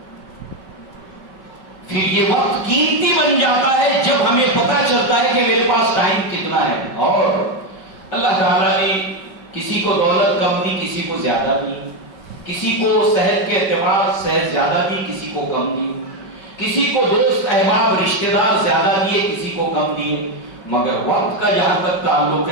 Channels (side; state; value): right; late; 5.3 ms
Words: پھر یہ وقت قیمتی بن جاتا ہے جب ہمیں پتہ چلتا ہے کہ میرے پاس ٹائم کتنا ہے۔ اور اللہ تعالیٰ نے کسی کو دولت کم دی، کسی کو زیادہ دی، کسی کو صحت کے اعتبار صحت زیادہ دی، کسی کو کم دی، کسی کو دوست احباب رشتہ دار زیادہ دیے، کسی کو کم دیے، مگر وقت کا جہاں تک تعلق